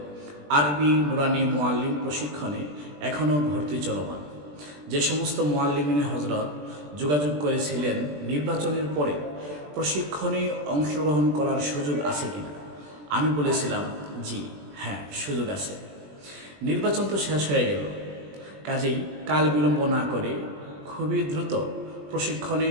আরবি নুরানি মুআল্লিম প্রশিক্ষণে এখনও ভর্তি চলমান। যে সমস্ত মুআল্লিমিনে হজরত যোগাযোগ করেছিলেন নির্বাচনের পরে প্রশিক্ষণে অংশগ্রহণ করার সুযোগ আছে কিনা, আমি বলেছিলাম জি হ্যাঁ, সুযোগ আছে। নির্বাচন তো শেষ হয়ে গেল, কাজেই কাল বিলম্ব না করে খুবই দ্রুত প্রশিক্ষণে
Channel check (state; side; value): late; left; 20 ms